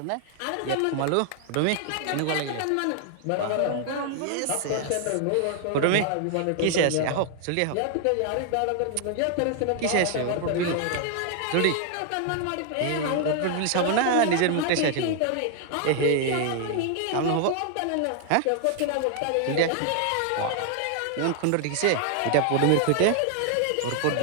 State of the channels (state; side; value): different; both; correlation 0.00